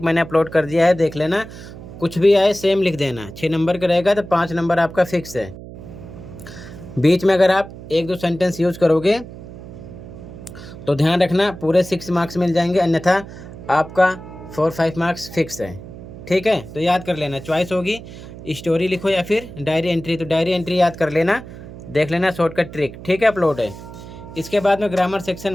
मैंने अपलोड कर दिया है, देख लेना। कुछ भी आए सेम लिख देना। 6 नंबर का रहेगा तो 5 नंबर आपका फिक्स है। बीच में अगर आप 1-2 सेंटेंस यूज करोगे तो ध्यान रखना पूरे 6 मार्क्स मिल जाएंगे, अन्यथा आपका 4-5 मार्क्स फिक्स है, ठीक है। तो याद कर लेना, चॉइस होगी स्टोरी लिखो या फिर डायरी एंट्री। तो डायरी एंट्री याद कर लेना, देख लेना शॉर्टकट ट्रिक, ठीक है, अपलोड है। इसके बाद में ग्रामर सेक्शन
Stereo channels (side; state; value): right; noise; hum, 14 dB below the sound